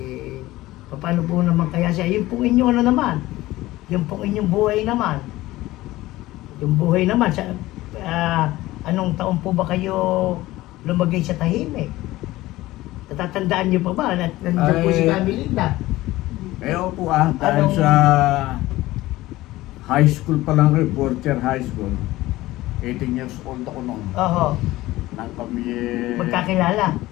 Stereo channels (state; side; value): quieter; right; 17.5 dB